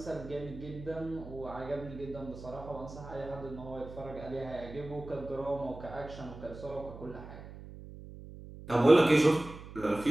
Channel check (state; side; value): noise; right; hum, 14 dB below the sound